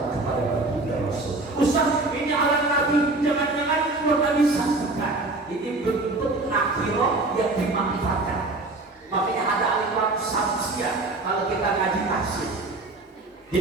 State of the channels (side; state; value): left; quieter; 3.1 dB